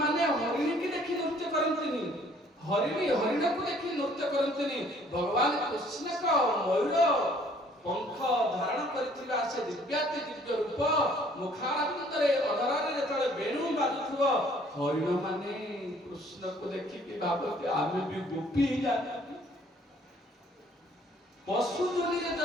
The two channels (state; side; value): normal; both; correlation 0.59